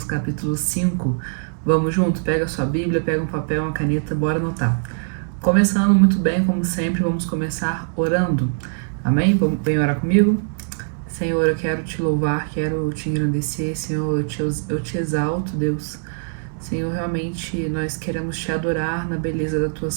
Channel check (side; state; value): left; silent; digital silence